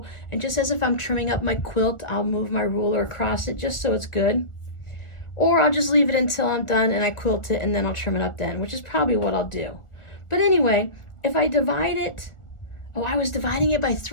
and just as if I'm trimming up my quilt, I'll move my ruler across it just so it's good. Or I'll just leave it until I'm done and I quilt it, and then I'll trim it up then, which is probably what I'll do. But anyway, if I divide it, oh, I was dividing it by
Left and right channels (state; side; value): late; right; 1.4 ms